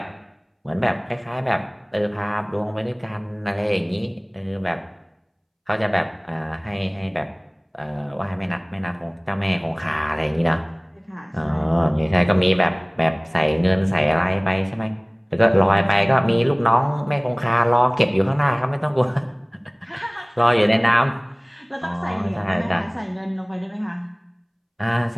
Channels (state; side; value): identical; both; correlation 1.00